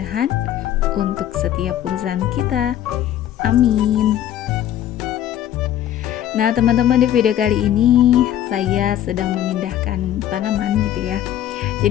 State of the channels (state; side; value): quieter; right; 11.5 dB